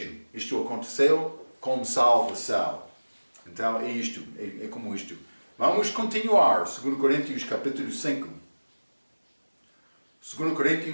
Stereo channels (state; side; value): inverted; both; correlation -1.00